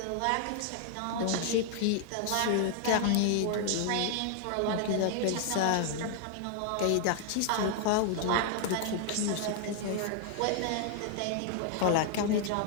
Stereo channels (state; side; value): different; both; correlation 0.00